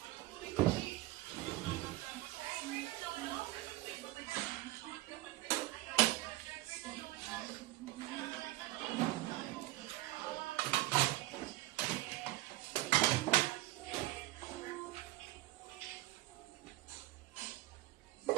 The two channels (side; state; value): left; quieter; 17.7 dB